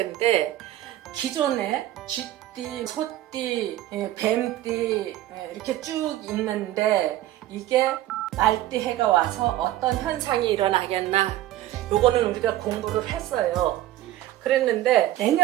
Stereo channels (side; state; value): left; quieter; 14.3 dB